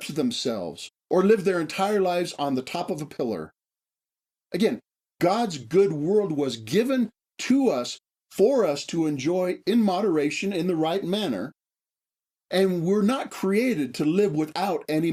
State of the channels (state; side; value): identical; both; correlation 1.00